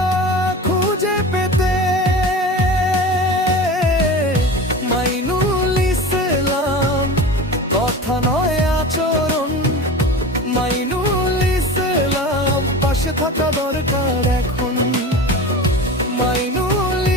খুঁজে পেতে। মাইনুল ইসলাম, কথা নয় আচরণ। মাইনুল ইসলাম, পাশে থাকা দরকার এখন। মাইনুল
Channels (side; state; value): both; normal; correlation 0.32